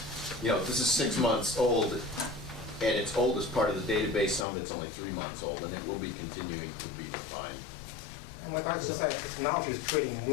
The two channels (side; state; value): right; drops out; at 4.5 s